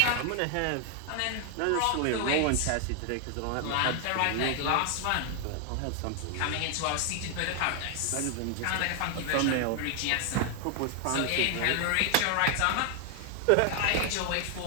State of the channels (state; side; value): different; both; correlation 0.00